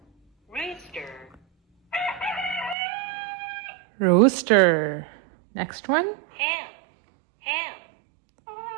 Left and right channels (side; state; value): left; drops out; at 2.8 s